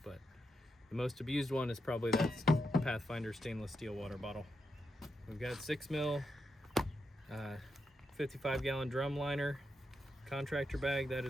but the most abused one is probably that Pathfinder stainless steel water bottle. We've got 6 mil 55 gallon drum liner contractor bag that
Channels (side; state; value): both; normal; correlation 0.85